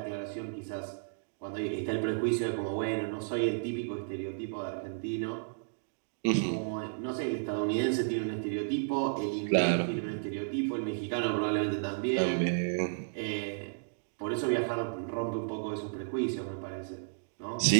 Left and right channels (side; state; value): left; silent; digital silence